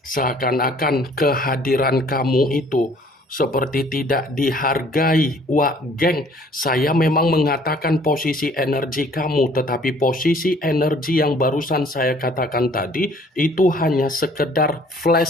Seakan-akan kehadiran kamu itu seperti tidak dihargai, Wak Geng. Saya memang mengatakan posisi energi kamu, tetapi posisi energi yang barusan saya katakan tadi itu hanya sekedar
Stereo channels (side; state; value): both; normal; correlation 0.57